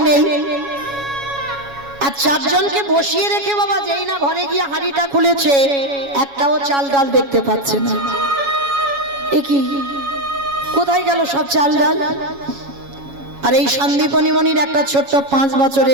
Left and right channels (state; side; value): late; left; 7.2 ms